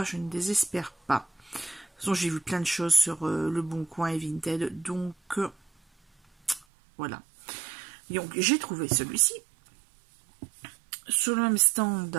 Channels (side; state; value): left; drops out; at 6.7 s